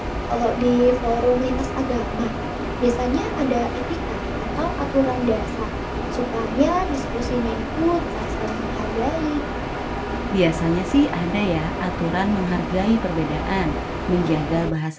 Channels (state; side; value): identical; both; correlation 1.00